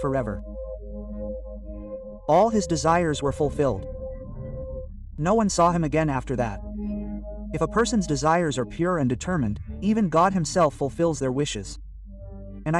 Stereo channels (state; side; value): identical; both; correlation 1.00